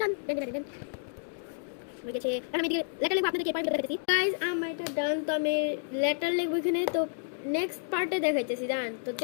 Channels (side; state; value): right; silent; digital silence